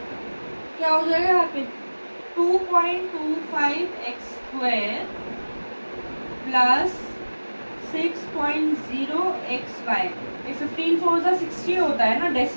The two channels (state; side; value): inverted; both; correlation -1.00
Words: क्या हो जाएगा यहाँ पे 2.25x स्क्वायर प्लस 6.0xy। ये 15 4 सा 60 होता है ना,